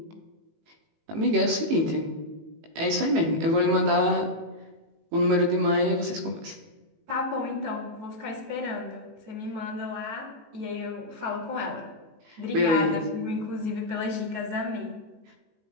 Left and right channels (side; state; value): left; late; 18 ms